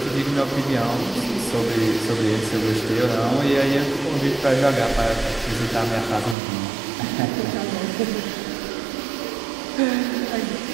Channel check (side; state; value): left; drops out; at 6.4 s